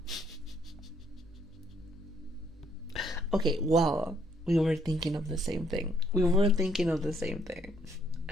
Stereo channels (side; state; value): both; normal; correlation 0.68